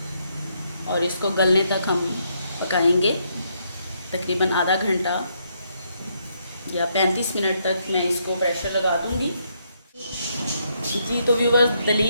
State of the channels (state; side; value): inverted; both; correlation -0.75